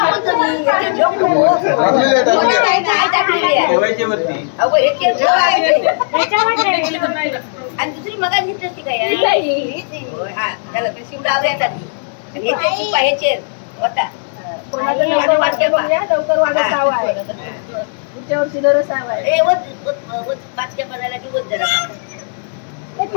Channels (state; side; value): silent; right; digital silence